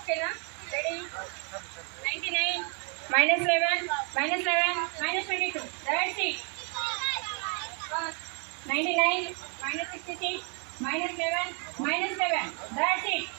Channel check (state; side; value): quieter; left; 37.4 dB